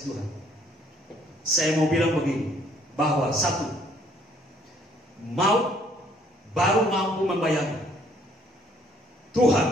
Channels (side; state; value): both; normal; correlation 0.63